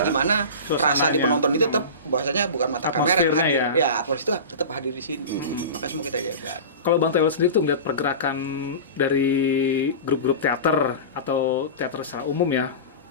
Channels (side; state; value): both; inverted; correlation -0.30